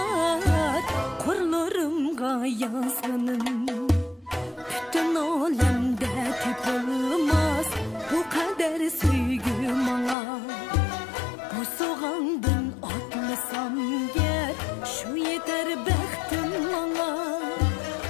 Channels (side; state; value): right; drops out; at 10.2 s